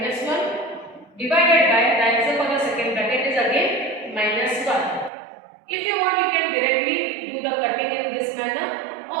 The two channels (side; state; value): left; drops out; at 5.1 s